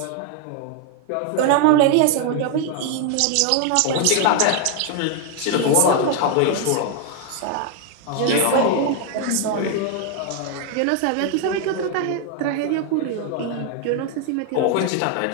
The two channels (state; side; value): different; both; correlation 0.00